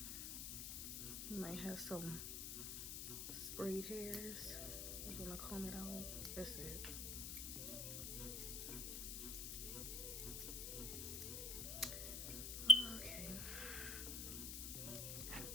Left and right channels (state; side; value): noise; left; hiss, 3 dB below the sound